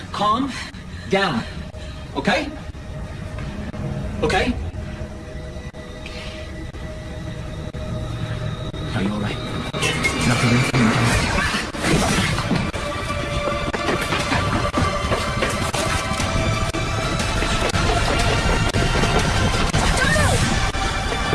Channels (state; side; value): identical; both; correlation 1.00